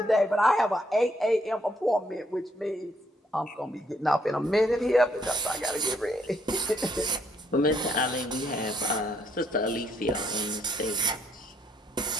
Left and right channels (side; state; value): both; normal; correlation 0.70